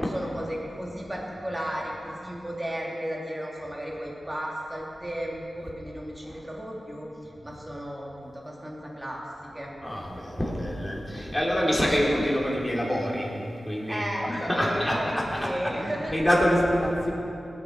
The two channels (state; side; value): normal; both; correlation 0.95